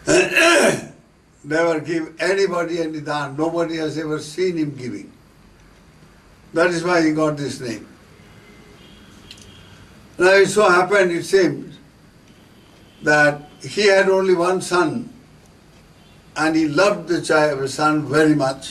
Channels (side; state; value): both; identical; correlation 1.00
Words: Never give anybody any dhan. Nobody has ever seen him giving. That is why he got this name. Now it so happened, it seems, that he had only one son, and he loved the son very